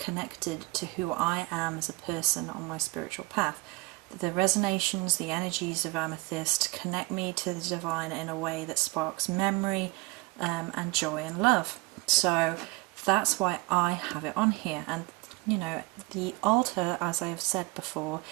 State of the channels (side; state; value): left; quieter; 24.7 dB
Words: to who I am as a person on my spiritual path. The resonations, the energies of amethyst connect me to the divine in a way that sparks memory and joy and love. So that's why I have it on here. And you know, the altar, as I have said before,